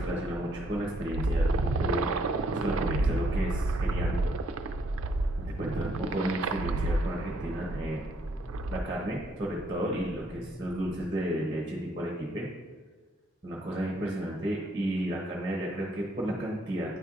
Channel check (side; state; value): both; normal; correlation 0.70